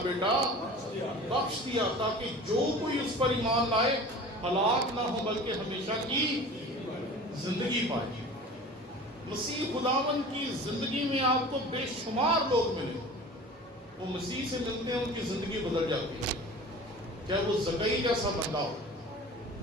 بیٹا بخش دیا، تاکہ جو کوئی اس پر ایمان لائے ہلاک نہ ہو بلکہ ہمیشہ کی زندگی پائے۔ مسیح خداوند کی زندگی میں آپ کو بے شمار لوگ ملے، وہ مسیح سے ملتے ہیں ان کی زندگی بدل جاتی ہے، چاہے وہ زکئی جیسا بندہ ہو،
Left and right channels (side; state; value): both; normal; correlation 0.39